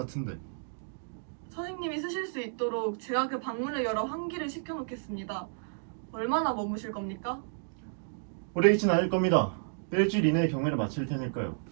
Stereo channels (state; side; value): silent; left; digital silence